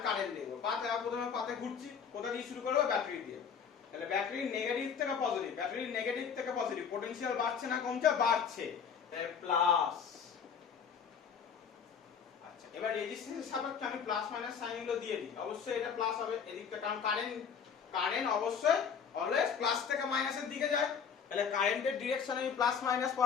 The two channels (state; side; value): quieter; right; 6.9 dB